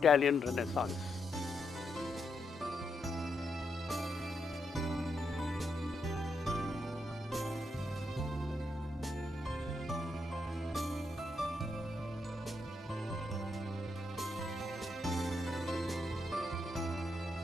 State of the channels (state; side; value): normal; both; correlation 0.81